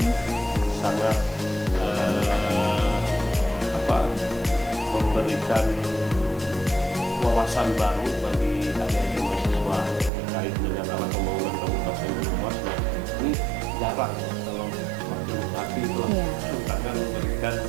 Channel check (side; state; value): left; drops out; at 10.1 s